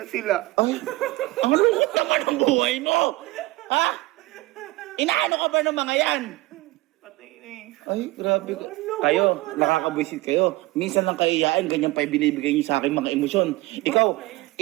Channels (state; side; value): quieter; left; 20.1 dB